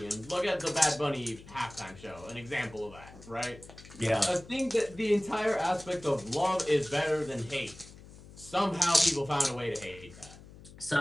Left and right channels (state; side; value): noise; left; hum, 19 dB below the sound